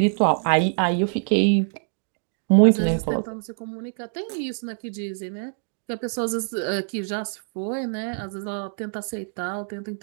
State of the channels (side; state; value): left; silent; digital silence